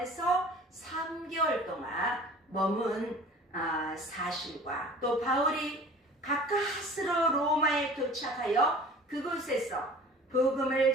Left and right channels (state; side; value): normal; both; correlation 0.44